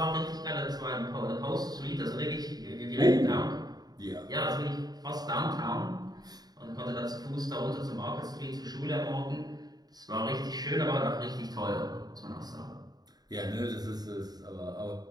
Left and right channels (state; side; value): late; left; 0.19 ms